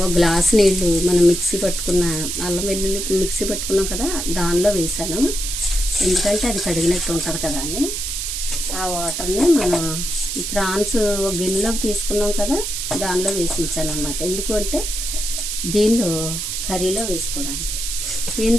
గ్లాస్ నీళ్ళు మనం మిక్సీ పట్టుకున్న అల్లం వెల్లుల్లి మిక్సీ పట్టుకున్నాం కదా దానిలో వేసాను. ఎందుకంటే అది కడిగినట్టు ఉంటుంది కదా అని. ఆ వాటర్ని మనం ప్రాన్స్ ఒక గిన్నెలోకి తీసుకున్నాం కదా దానిలో వేసి ఉంచాను అనమాట. ఎందుకు అంటే దీనిలో కర్రీలో వేసుకోవడానికి.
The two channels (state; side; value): noise; right; hiss, 3 dB below the sound